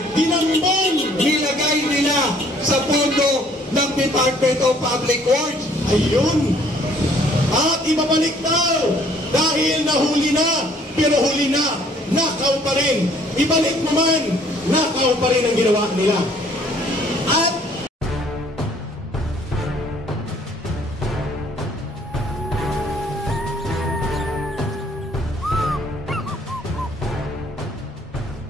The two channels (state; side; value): normal; both; correlation 0.60